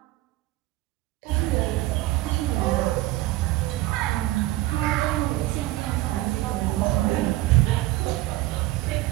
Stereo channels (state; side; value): quieter; left; 17.7 dB